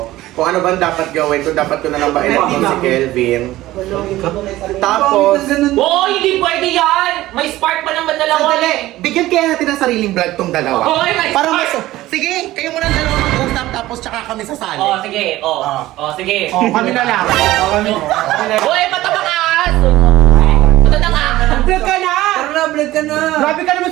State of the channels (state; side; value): quieter; left; 16.3 dB